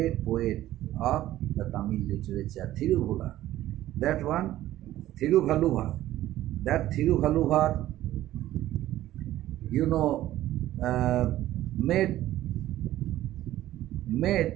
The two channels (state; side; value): quieter; left; 14.2 dB